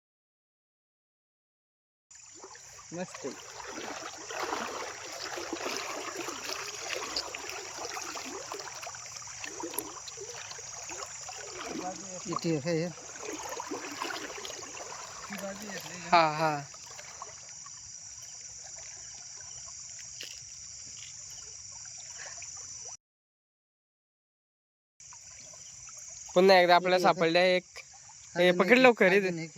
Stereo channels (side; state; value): both; identical; correlation 1.00